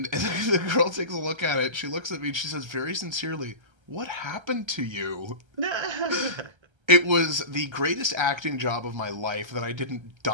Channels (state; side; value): late; left; 1.3 ms